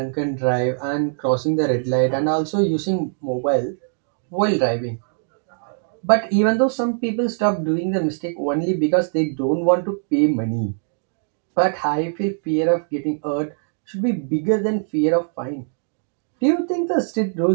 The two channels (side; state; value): left; silent; digital silence